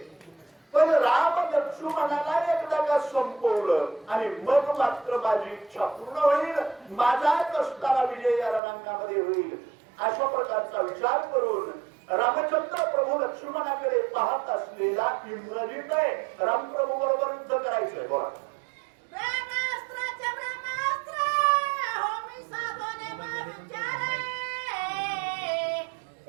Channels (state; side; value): drops out; left; at 8.6 s